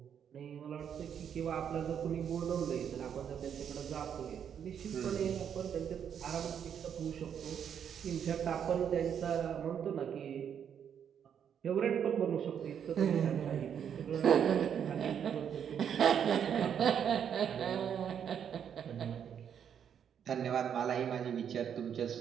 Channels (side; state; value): left; quieter; 8.3 dB